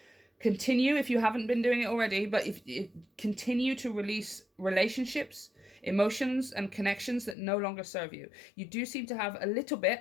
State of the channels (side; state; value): right; drops out; at 7.4 s